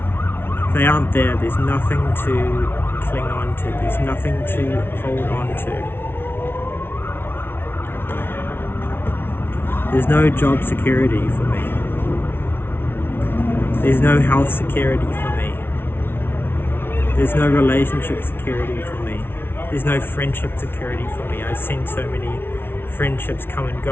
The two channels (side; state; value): right; late; 0.11 ms